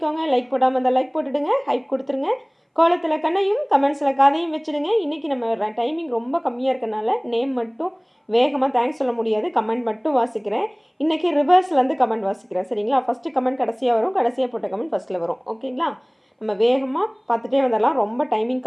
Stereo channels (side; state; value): both; identical; correlation 1.00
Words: லைக் போடாமல் இருந்தால் லைக் போட்டுடுங்க, ஹைப் கொடுத்துருங்க. கோலத்தில் கண்ணையும் கமெண்ட்ஸில் கதையும் வச்சுடுங்க. இன்றைக்கி நம்ம டைமிங் ரொம்ப கம்மியாக இருக்கனால நேம் மட்டும் வேகமாக தேங்க்ஸ் சொல்ல முடியாது, கமெண்ட் மட்டும் வாசிக்கிறேன். இன்றைக்கி ரிவர்ஸ்லேருந்து கமெண்ட் வாசிக்கிறேன், சரிங்களா? ஃபஸ்ட்டு கமெண்ட் கடைசியாக வரும், கடைசியாக போட்ட கமெண்ட் ஃபஸ்ட்டில் வரும், ஓகேங்களா? நம்ம வேகமாக பார்த்துட்டே வந்தரலாம். ரொம்ப டைமிங்